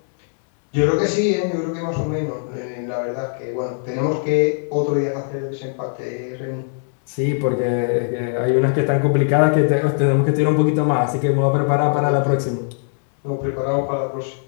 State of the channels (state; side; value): silent; right; digital silence